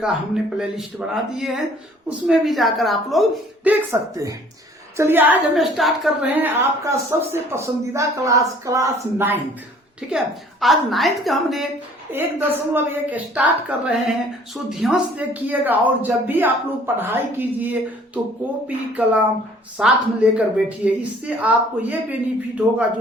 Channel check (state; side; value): normal; both; correlation 0.55